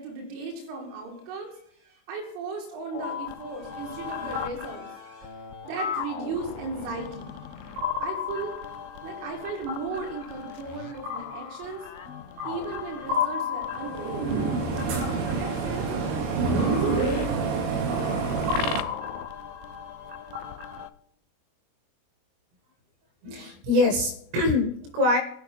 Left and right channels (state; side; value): late; left; 24 ms